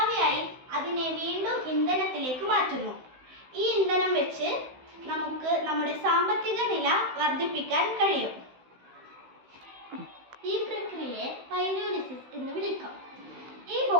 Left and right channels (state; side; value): late; left; 16 ms